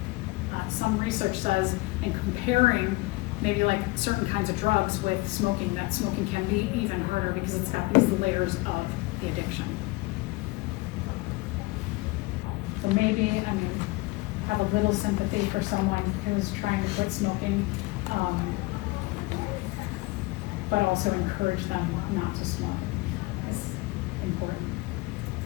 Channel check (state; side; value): quieter; right; 22.4 dB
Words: some research says in comparing maybe like certain kinds of drugs with smoking, that smoking can be even harder because it's got these layers of the addiction. So maybe, have a little sympathy for someone who's trying to quit smoking, but also encourage them not to smoke. It's important.